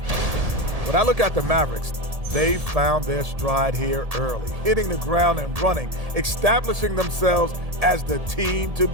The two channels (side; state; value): left; late; 1.7 ms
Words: When I look at the Mavericks, they found their stride here early, hitting the ground and running, establishing themselves as the team to